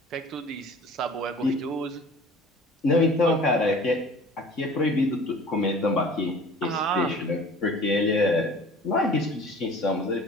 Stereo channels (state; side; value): normal; both; correlation 0.45